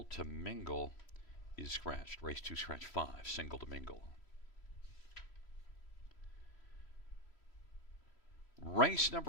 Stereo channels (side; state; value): right; late; 3.1 ms